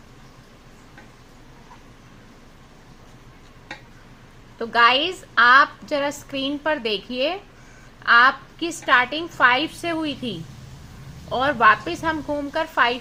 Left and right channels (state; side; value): identical; both; correlation 1.00